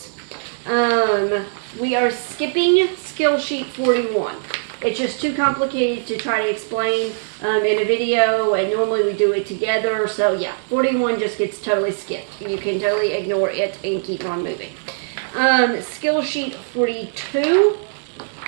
We are skipping skill sheet 41. It's just too complicated to try to explain in a video, and normally we do it together. So yeah, 41 just gets totally skipped. You can totally ignore it and keep on moving. Skill sheet 42,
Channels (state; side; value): silent; left; digital silence